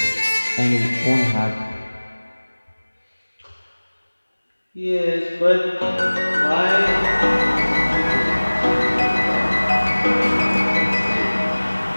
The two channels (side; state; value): both; inverted; correlation -1.00